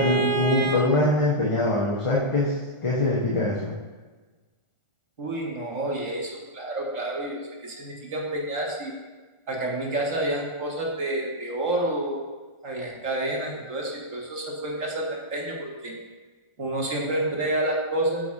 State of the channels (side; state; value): right; late; 1.4 ms